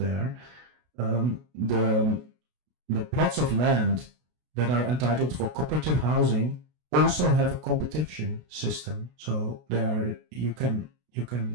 The plots of land that are entitled for cooperative housing also have a competition system. So there you can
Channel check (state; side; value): late; left; 33 ms